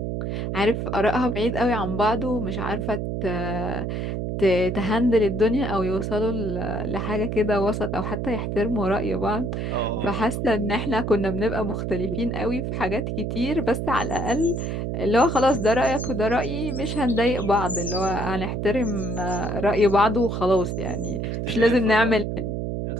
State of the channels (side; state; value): right; noise; hum, 2 dB below the sound